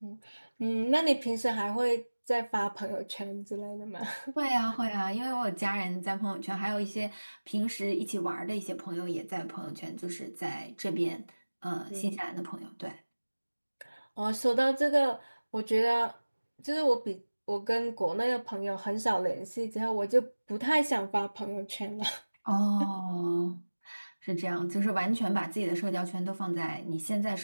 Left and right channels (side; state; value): both; inverted; correlation -1.00